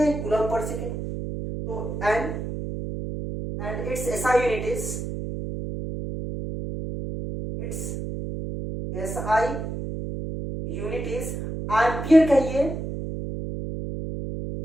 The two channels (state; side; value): noise; right; hum, 5 dB below the sound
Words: कूलम पर सेकेंड। तो and its SI unit is, SI unit is ampere कहिए,